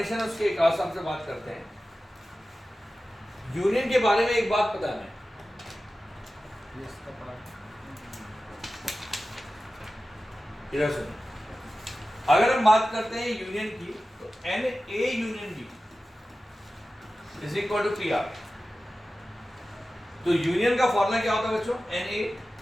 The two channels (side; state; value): both; normal; correlation 0.95